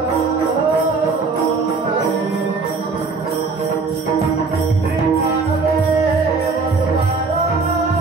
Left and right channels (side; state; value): left; quieter; 4.4 dB